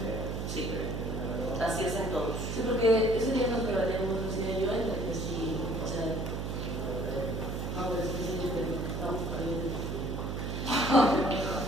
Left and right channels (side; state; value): right; noise; hum, 3 dB below the sound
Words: Sí. Así es en todos. Sí, porque ese día nos debatíamos, decía yo, entre que sí, o sea, no, pero es que sí, estamos perdiendo.